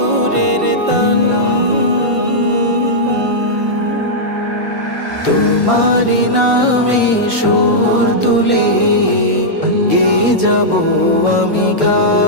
তান। তোমারি নামে সুর তুলে গে যাব আমি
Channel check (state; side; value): late; left; 1.5 ms